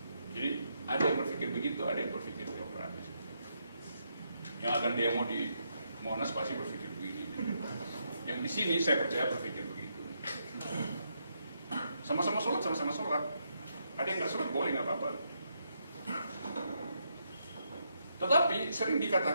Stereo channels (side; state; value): both; inverted; correlation -0.79